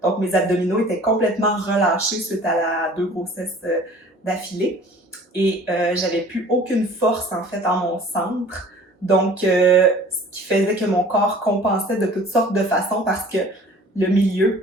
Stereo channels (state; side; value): normal; both; correlation 0.48